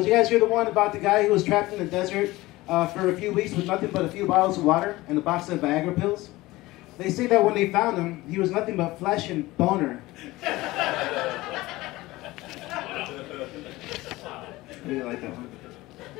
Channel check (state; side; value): quieter; right; 19.2 dB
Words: you guys hear the one about the guy who was trapped in the desert for a few weeks with nothing but a few bottles of water and a box of Viagra pills? They say that when they found him, he was nothing but flesh and boner. I really like that one.